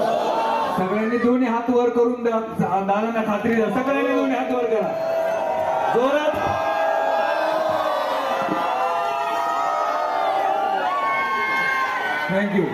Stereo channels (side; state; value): both; identical; correlation 1.00